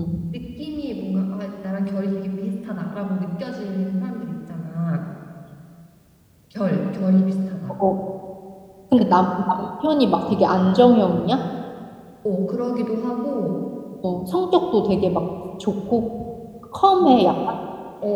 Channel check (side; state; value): both; identical; correlation 1.00